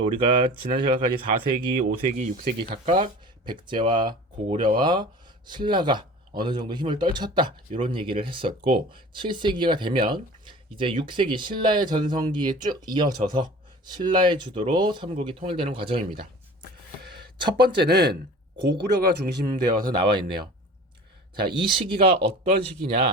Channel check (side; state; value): both; normal; correlation 0.41